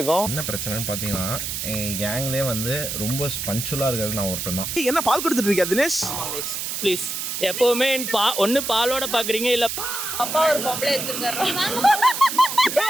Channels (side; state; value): right; noise; hiss, 4 dB below the sound